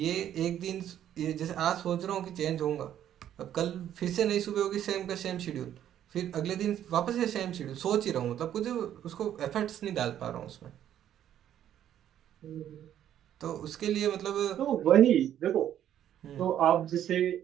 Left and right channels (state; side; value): quieter; left; 10.8 dB